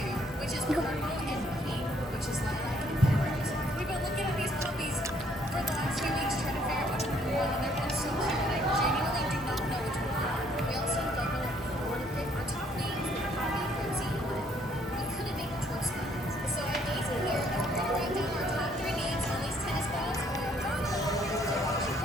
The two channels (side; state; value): both; normal; correlation 0.66